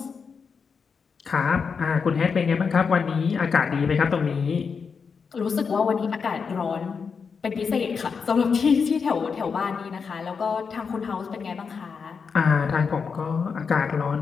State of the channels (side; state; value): right; quieter; 5.7 dB